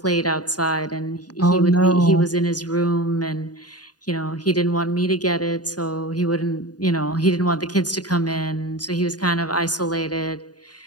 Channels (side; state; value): right; late; 0.69 ms